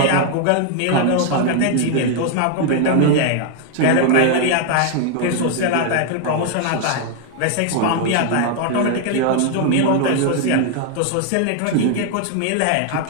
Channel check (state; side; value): different; both; correlation 0.00